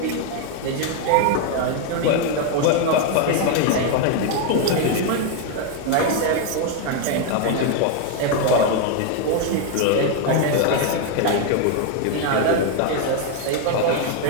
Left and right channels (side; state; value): both; different; correlation 0.01